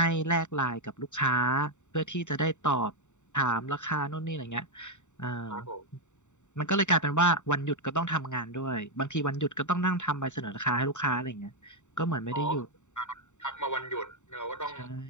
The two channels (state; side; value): late; right; 0.84 ms